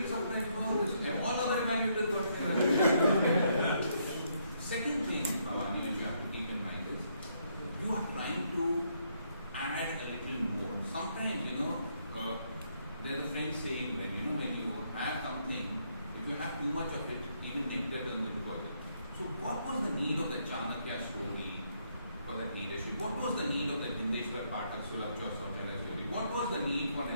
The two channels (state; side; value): inverted; both; correlation -0.74